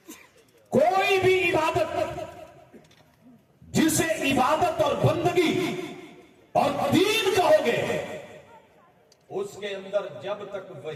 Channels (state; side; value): identical; both; correlation 1.00